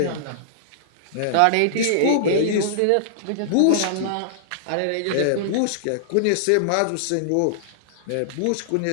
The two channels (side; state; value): both; different; correlation -0.01